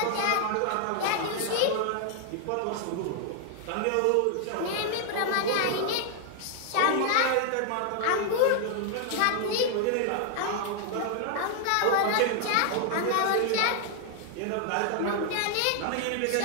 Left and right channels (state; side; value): different; both; correlation 0.00